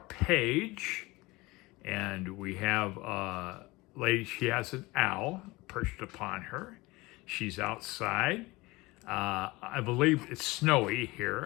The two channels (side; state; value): right; quieter; 21.9 dB